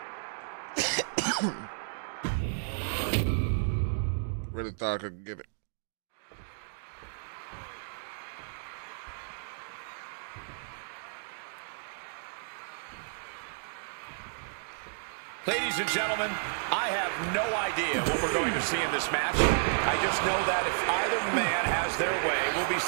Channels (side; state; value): left; silent; digital silence